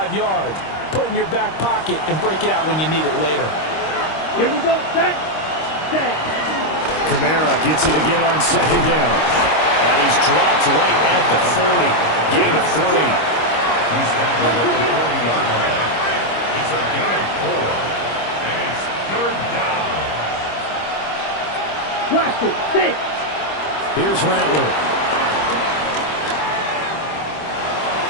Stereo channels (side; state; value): right; late; 26 ms